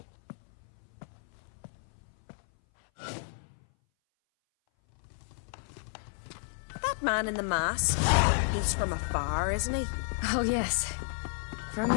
That man in the mask, he's from afar, isn't he? Oh yes, from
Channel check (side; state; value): right; silent; 56 dB below the other